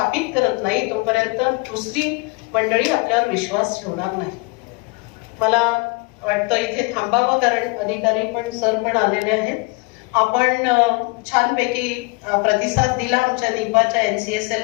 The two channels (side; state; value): right; quieter; 27.9 dB